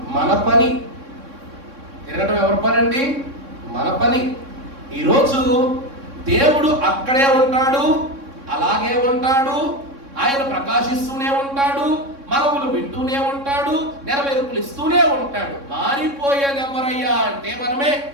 మన పని. తిరగటం ఎవరి పని అండి? మన పని. ఈరోజు దేవుడు అక్కడే ఉంటాడు, అలాగే ఉంటాడు, ఆయన ప్రకాశిస్తూనే ఉంటాడు, మనవులు వింటూనే ఉంటాడు, నెరవేర్పులు ఇస్తూనే ఉంటాడు. మారిపోయేది ఎవరయ్యా అంటే మనమే.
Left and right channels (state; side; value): late; left; 3.6 ms